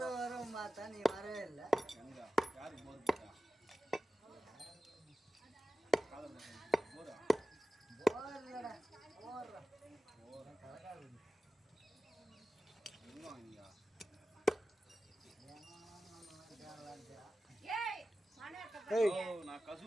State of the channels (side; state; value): both; normal; correlation 0.94